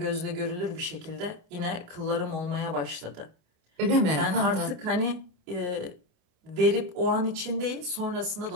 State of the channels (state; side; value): late; left; 28 ms